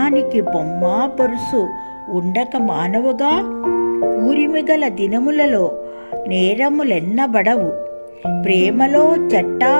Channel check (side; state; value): both; inverted; correlation -1.00